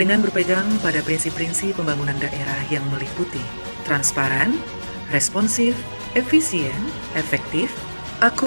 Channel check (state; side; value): inverted; both; correlation -1.00